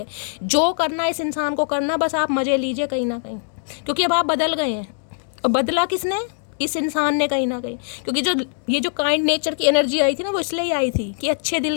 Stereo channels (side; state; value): right; silent; 64 dB below the other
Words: जो करना इस इंसान को करना, बस आप मज़े लीजिए कहीं ना कहीं, क्योंकि अब आप बदल गए हैं। और बदला किसने? इस इंसान ने कहीं ना कहीं, क्योंकि जो ये जो काइंड नेचर की एनर्जी आई थी ना, वो इसलिए ही आई थी कि अच्छे दिल